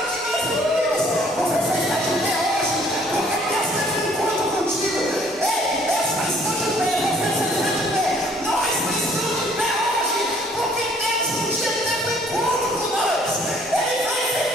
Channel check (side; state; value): both; normal; correlation 0.60